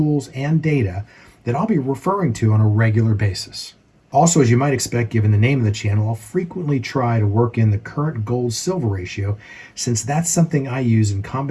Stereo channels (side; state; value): both; identical; correlation 1.00